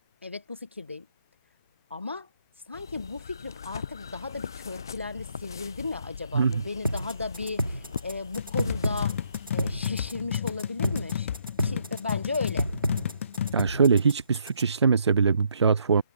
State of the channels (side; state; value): both; inverted; correlation -0.71